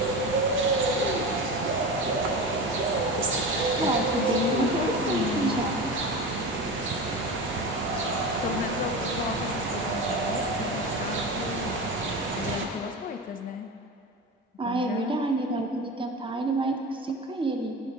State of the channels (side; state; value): both; normal; correlation 0.27